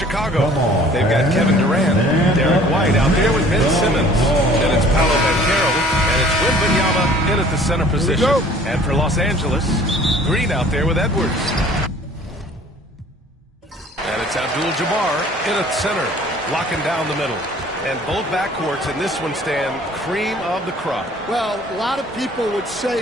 They've got Kevin Durant, Derek White out there with Ben Simmons. Then it's Paolo Banchero, and it's Wembanyama in at the center position. And for Los Angeles, Green out there with Edwards. And it's Abdul-Jabbar in at center, locking down the middle. And both backcourts in this one stand cream of the crop. Well, a lot of people would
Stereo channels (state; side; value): normal; both; correlation 0.51